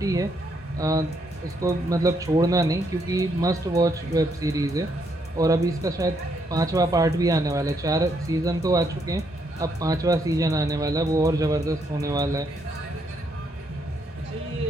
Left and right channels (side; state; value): both; normal; correlation 0.75